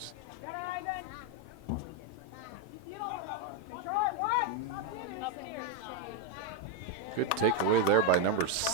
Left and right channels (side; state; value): both; normal; correlation 0.02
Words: Good takeaway there by number